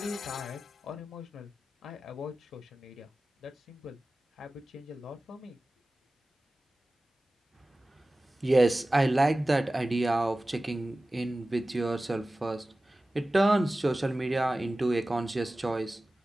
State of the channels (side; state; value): both; normal; correlation 0.96